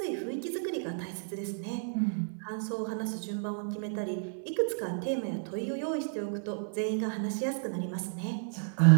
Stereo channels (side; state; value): left; silent; 56 dB below the other